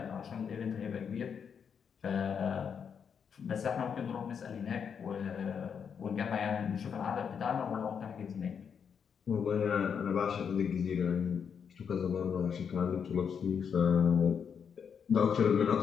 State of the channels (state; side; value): quieter; right; 7.0 dB